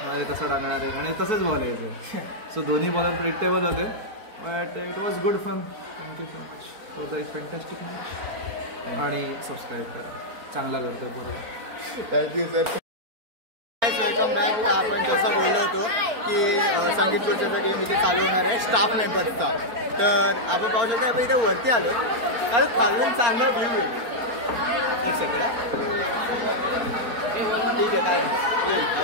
आहे, तसं टाकणार आहे, आणि तसंच बॉल यायचं. सो दोन्ही बॉलर प्रिडिक्टेबल होते. But it was good fun. Thank you so much for the fantastic match. आणि सबस्क्राईब करा, चांगला करतो बरोबर. Thank you sir. Welcome back. आपण जसं बोललो होतो की संगीत खुर्च्याचा गेम इथे चालू होणार आहे स्टाफ मेंबर्सचा. तर आपण पाहू शकतो, आपण इथे वरती आलो कारण खालून चांगला व्ह्यू आहे. ठीक आहे, काय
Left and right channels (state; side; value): late; left; 4.4 ms